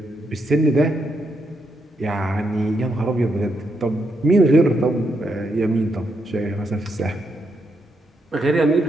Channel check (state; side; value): normal; both; correlation 0.80